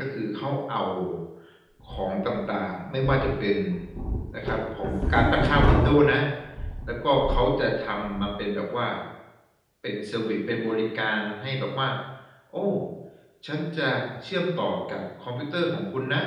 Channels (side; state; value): both; identical; correlation 1.00